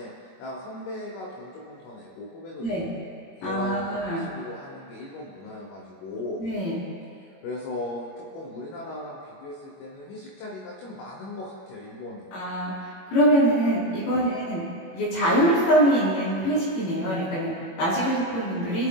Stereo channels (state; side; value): late; right; 21 ms